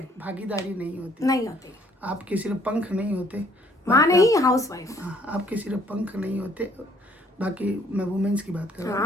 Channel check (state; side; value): normal; both; correlation 0.62